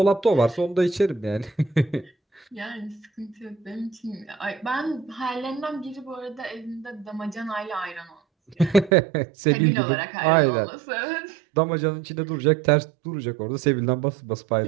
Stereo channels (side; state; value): left; drops out; at 8.9 s